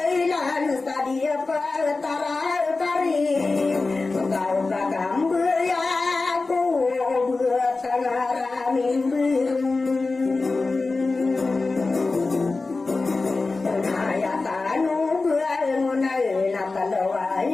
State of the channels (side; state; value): right; quieter; 3.7 dB